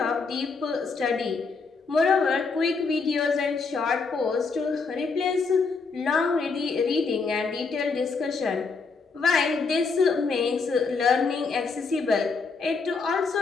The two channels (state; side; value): quieter; right; 4.6 dB